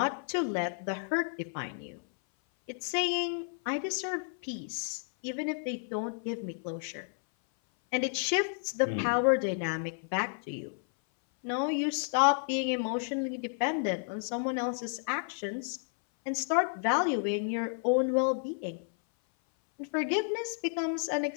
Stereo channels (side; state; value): right; silent; 57 dB below the other